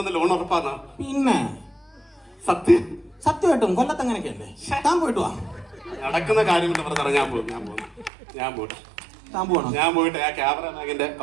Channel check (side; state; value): left; drops out; at 8.1 s